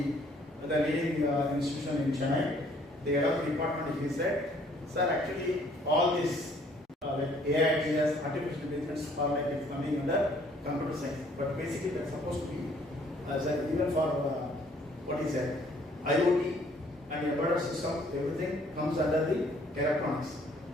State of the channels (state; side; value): normal; both; correlation 0.61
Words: the leading institution in Chennai. The head of the department, he said, sir, actually all these like AITS, artificial intelligence, or like it's coming under computer science. But basically, that's supposed to be as even for what is that IoT and embedded system, everything comes under the electronics.